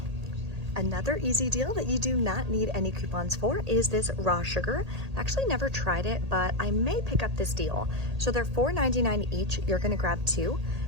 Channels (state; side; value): late; left; 1.8 ms